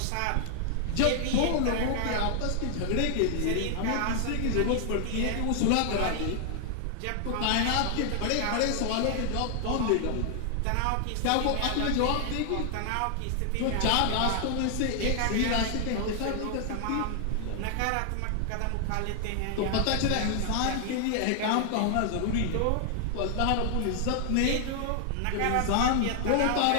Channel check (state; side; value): different; both; correlation 0.00